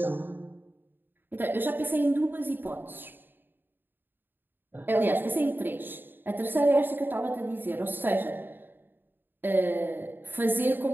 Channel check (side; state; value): left; late; 0.095 ms